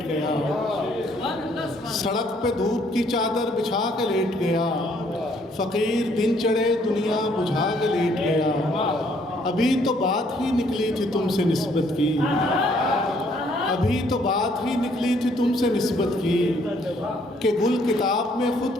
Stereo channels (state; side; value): normal; both; correlation 0.65